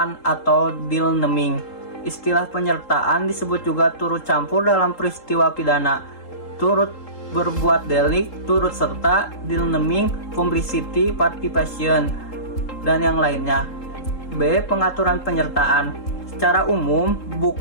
atau deal naming. Istilah penyertaan disebut juga turut campur dalam peristiwa pidana, turut berbuat delik, turut serta, deal naming, complicity, participation, dan yang lainnya. B. Pengaturan penyertaan. Secara umum,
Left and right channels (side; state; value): right; late; 3.7 ms